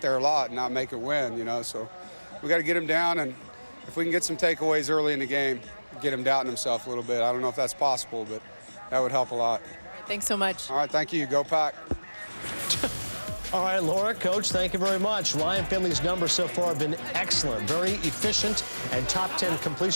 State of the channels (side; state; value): both; inverted; correlation -1.00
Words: there a lot and not make it win, you know. So we got to get him down, and if we can get some takeaways early in the game, get him doubting himself a little bit. I don't know if that's possible, but that would help a lot. Thanks so much. All right, thank you. Go Pack. All right, Laura, Coach, thank you very much. Ryan Finley's numbers so far have been excellent, very efficient, and top 10